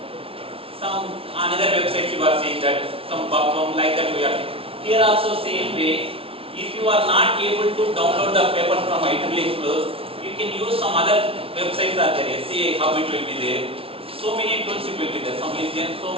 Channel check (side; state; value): left; late; 0.26 ms